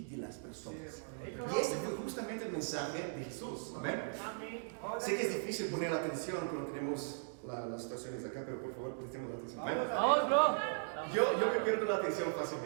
las personas. Y ese fue justamente el mensaje de Jesús. ¿Amén? Sé que es difícil poner la atención cuando tenemos las situaciones acá, pero por favor, prestemos la atención. ¿Amén? Yo me pierdo la atención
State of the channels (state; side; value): silent; left; digital silence